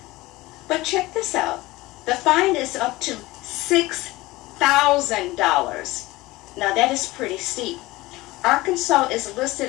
But check this out. The fine is up to $6,000. Now that is pretty steep. Arkansas is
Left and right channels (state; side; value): quieter; right; 19.7 dB